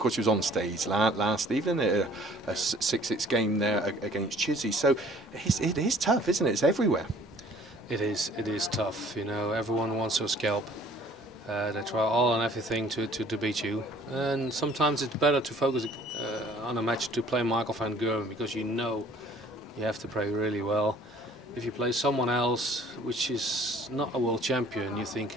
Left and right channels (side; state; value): both; normal; correlation 0.54